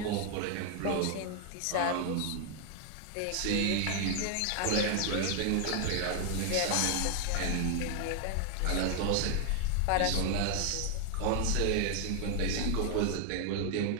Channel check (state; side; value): different; both; correlation 0.00